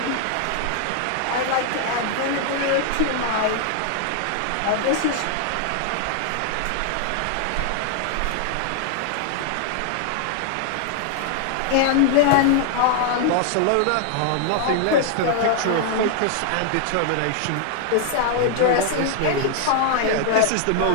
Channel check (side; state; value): both; different; correlation -0.01